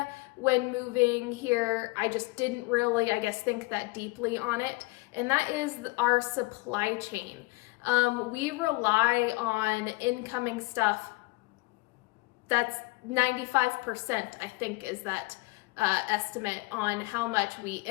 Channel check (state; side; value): quieter; right; 24.6 dB